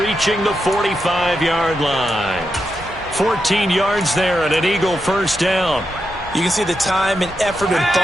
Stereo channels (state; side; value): normal; both; correlation 0.86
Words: the 45-yard line. 14 yards there and an Eagle first down. You can see the time and effort and